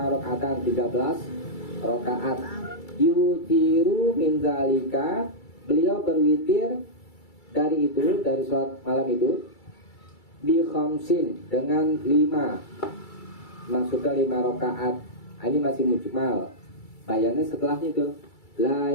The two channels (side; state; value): right; late; 2.3 ms